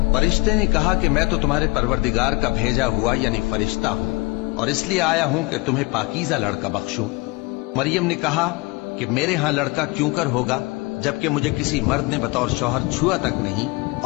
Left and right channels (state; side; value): quieter; right; 25.4 dB